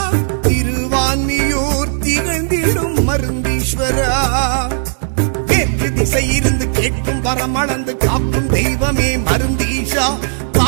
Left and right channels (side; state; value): left; silent; digital silence